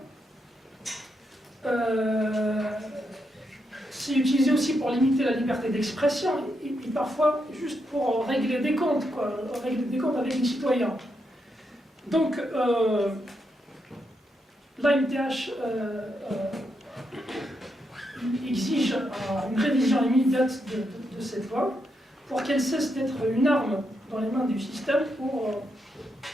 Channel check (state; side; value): normal; both; correlation 0.82